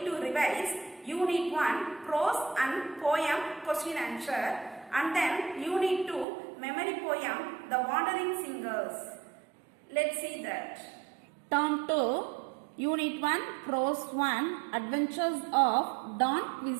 to revise Unit 1 Prose and Poem Question Answer and then Unit 2 Memory Poem The Wandering Singers. Let's see that. Turn to Unit 1 Prose 1 Adventures of Don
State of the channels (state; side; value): drops out; left; at 6.2 s